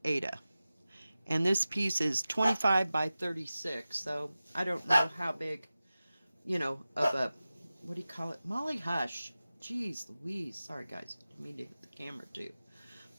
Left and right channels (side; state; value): both; inverted; correlation -0.96